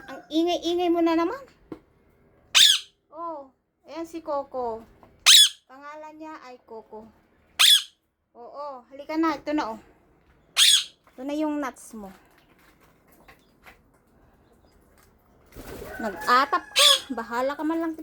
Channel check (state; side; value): identical; both; correlation 1.00